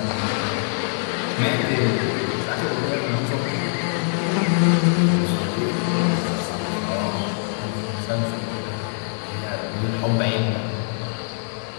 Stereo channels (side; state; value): right; silent; digital silence